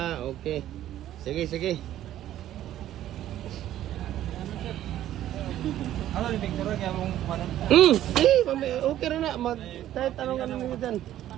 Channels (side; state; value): left; quieter; 12.6 dB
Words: Okay. Sige. Ano ni picture kaya mong panan? Okay ra na. Kahit anong ano niyo dyan.